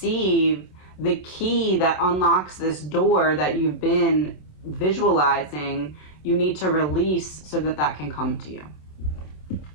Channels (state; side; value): late; right; 27 ms